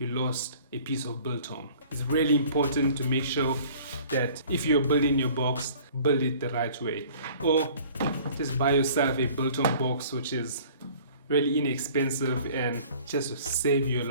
lost a piece of biltong. It's really important to make sure that if you're building your box, build it the right way, or just buy yourself a biltong box which is really inexpensive and just to save you a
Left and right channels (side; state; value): both; inverted; correlation -0.50